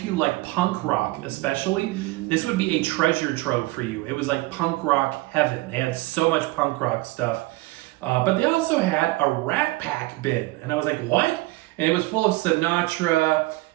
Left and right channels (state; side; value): quieter; left; 20.5 dB